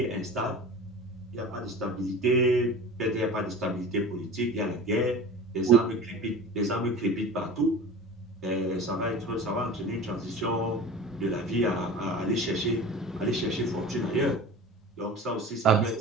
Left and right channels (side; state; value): both; normal; correlation 0.36